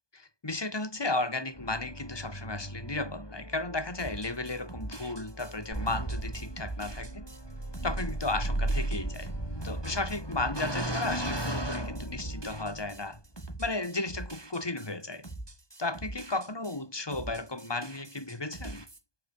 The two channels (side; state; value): right; late; 1.2 ms